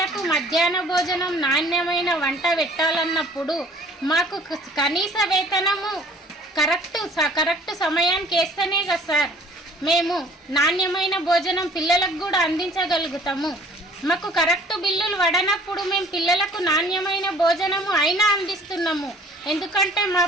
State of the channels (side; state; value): both; normal; correlation 0.52